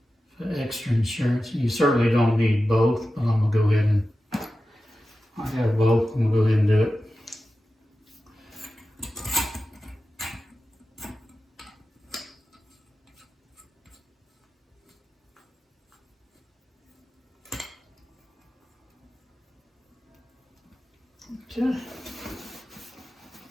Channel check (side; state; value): both; normal; correlation 0.93